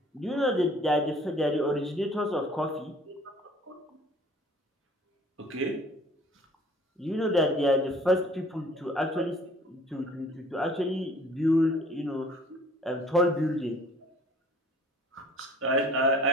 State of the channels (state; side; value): normal; both; correlation 0.53